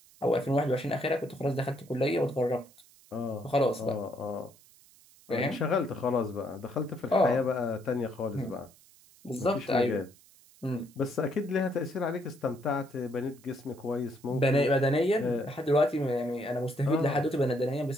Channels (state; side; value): noise; right; hiss, 26 dB below the sound